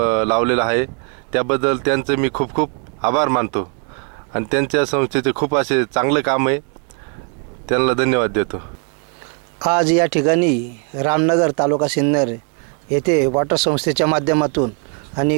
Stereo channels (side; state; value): left; quieter; 37.6 dB